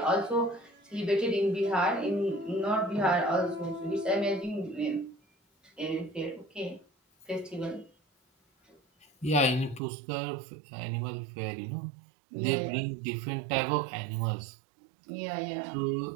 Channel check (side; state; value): left; drops out; at 9.8 s